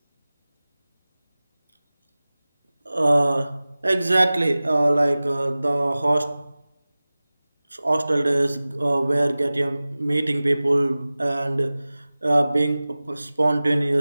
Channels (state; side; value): inverted; both; correlation -0.98